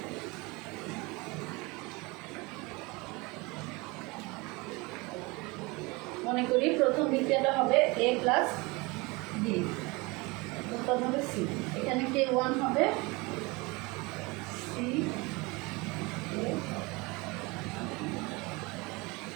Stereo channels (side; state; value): left; quieter; 25.4 dB